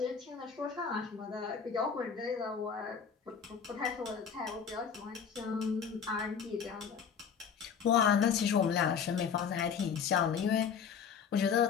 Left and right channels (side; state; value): right; quieter; 6.8 dB